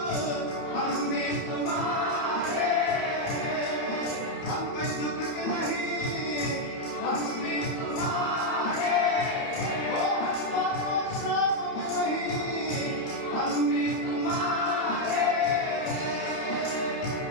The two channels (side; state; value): right; late; 30 ms